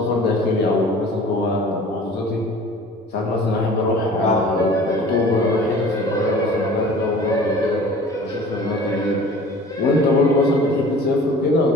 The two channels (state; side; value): normal; both; correlation 0.45